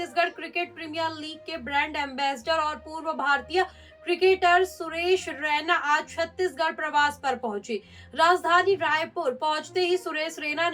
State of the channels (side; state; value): both; identical; correlation 1.00